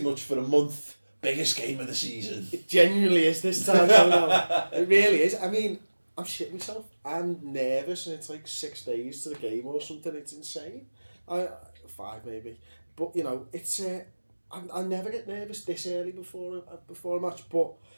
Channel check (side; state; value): both; inverted; correlation -1.00